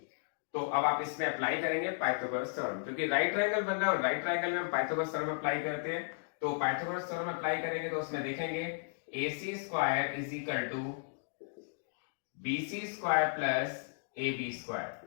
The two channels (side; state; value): right; silent; digital silence